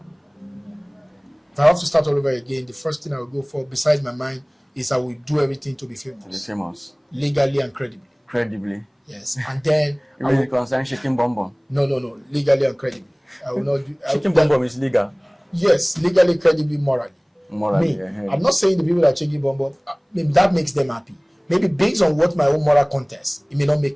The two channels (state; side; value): identical; both; correlation 1.00